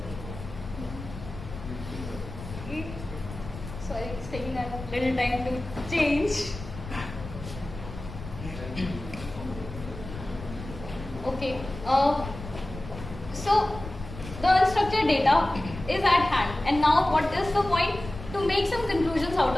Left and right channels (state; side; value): noise; left; rumble, 11 dB below the sound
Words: Sorry, it's taking a little time to change. Okay. So the unstructured data is at hand, and now what is the point? To make some conclusions out